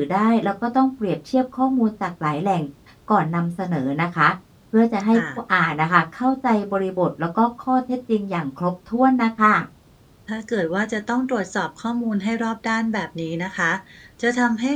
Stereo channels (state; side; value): identical; both; correlation 1.00